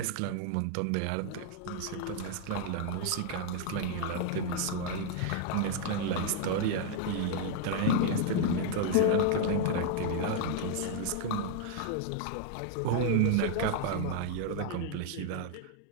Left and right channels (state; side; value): different; both; correlation 0.00